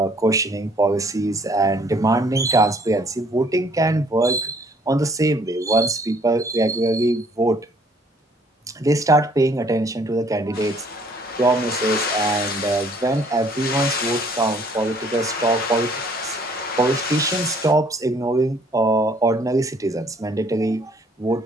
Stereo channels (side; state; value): both; normal; correlation 0.60